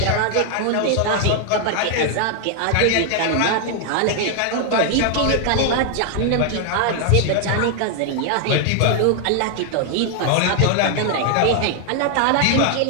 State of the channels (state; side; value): different; both; correlation 0.00